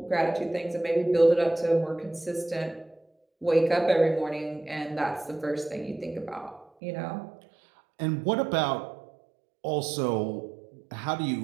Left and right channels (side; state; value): left; drops out; at 6.7 s